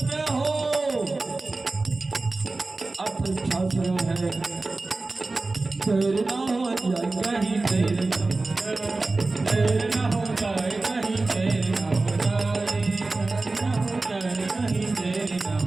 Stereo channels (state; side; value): quieter; left; 3.4 dB